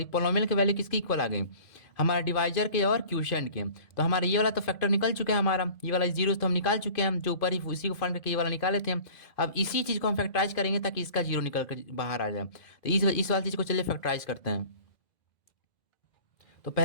पोलोमियल की वैल्यू किसकी इक्वल आ गई, हमारा डिवाइजर के और क्यूशेंट के। तो हमारा ये वाला तो फैक्टर निकल चुका है, हमारा ये वाला जीरो तो हम निकाल चुके हैं, जो ऊपर ही उसी को फाइंड करके ये वाला निकाले थे हम। अब इसी चीज़ को हम फैक्टराइज करेंगे ताकि इसका जीरो निकल कर बाहर आ जाए। तो इस वाली चीज़ को चलिए फैक्टराइज करते हैं। तो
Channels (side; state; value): right; late; 2.0 ms